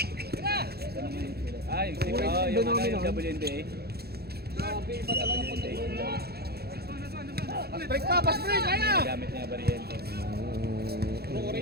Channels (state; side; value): late; left; 0.46 ms